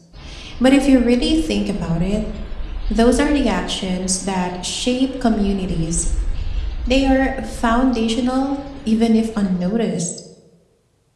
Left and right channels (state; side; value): identical; both; correlation 1.00